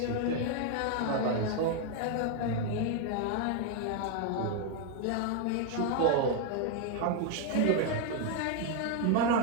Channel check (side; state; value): both; different; correlation 0.01